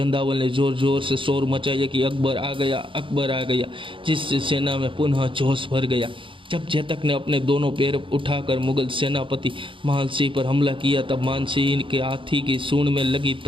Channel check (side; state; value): left; late; 0.25 ms